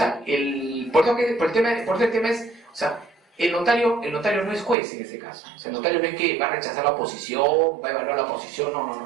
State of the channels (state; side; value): drops out; left; at 4.8 s